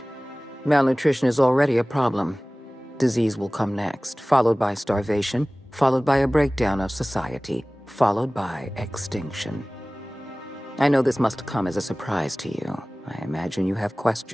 Malnutrition is already a problem. Disease will come next, followed by starvation, followed by a breakdown of society, followed by extinction. I know this must come as a surprise to you. I imagine you have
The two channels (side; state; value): both; normal; correlation 0.98